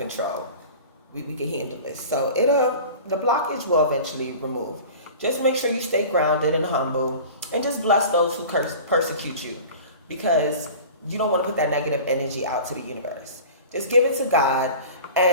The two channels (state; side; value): inverted; both; correlation -0.39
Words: We can handle this. So the blockage will eventually remove. Just make sure you stay grounded and humble and just bless those who persecute you, because you don't want to put that negative energy out to the universe. Just give it to God